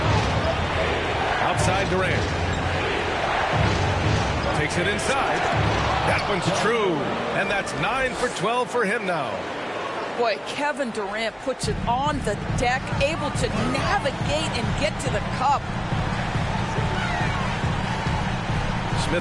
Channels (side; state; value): both; identical; correlation 1.00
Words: Outside Durant. Takes it inside. That one's true. And that's 9 for 12 for him now. Boy, Kevin Durant puts it on the deck, able to navigate and get to the cup.